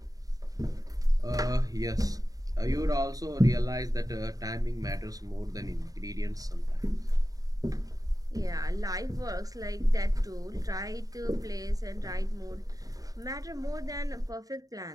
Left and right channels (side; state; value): left; late; 0.18 ms